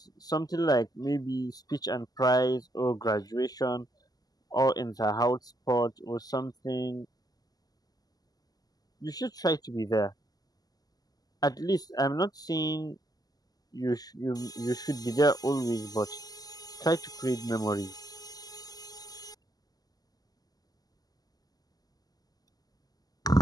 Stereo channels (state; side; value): late; right; 0.18 ms